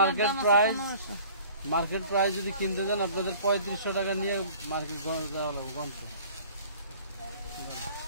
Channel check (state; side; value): inverted; both; correlation -0.49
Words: মার্কেট প্রাইস যদি কিনতে দেন আপনাদের 3500 টাকা নিয়ে মার্কেট যাওয়া লাগবে গন্থ,